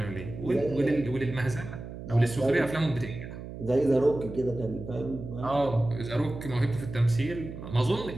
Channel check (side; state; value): right; noise; hum, 11 dB below the sound